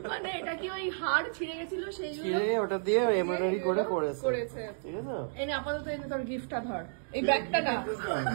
মানে এটা কি ওই হাড় ছিঁড়ে গেছিল সেইগুলো ওটা দিয়ে এমব্রয়ডারি করে করেছে। ঠিক আছে, এই আপাতত এনে তোর গিফটটা ধর। এই ব্যাগটা না,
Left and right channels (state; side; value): silent; left; digital silence